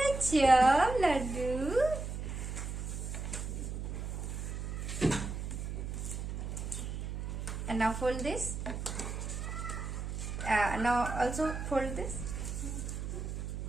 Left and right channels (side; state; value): right; noise; hum, 4 dB below the sound